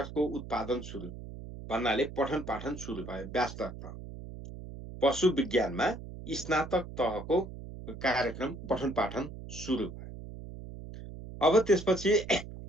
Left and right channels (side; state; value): right; noise; hum, 12 dB below the sound